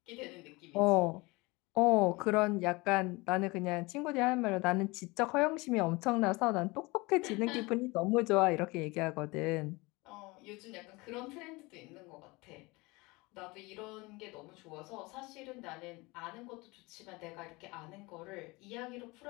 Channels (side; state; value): right; quieter; 24.1 dB